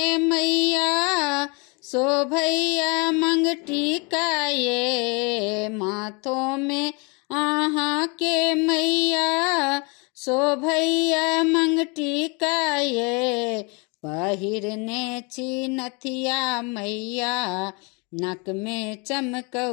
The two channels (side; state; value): right; quieter; 31.1 dB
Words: मैया शोभैया मंगटिका ये। माथों में आहाँ के मैया शोभैया मंगटिका ये। पहिरने छी नथिया मैया नक में